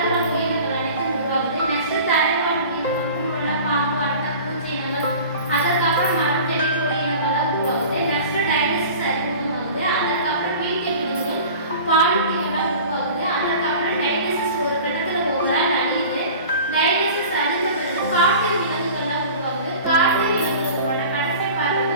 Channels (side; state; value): both; inverted; correlation -0.40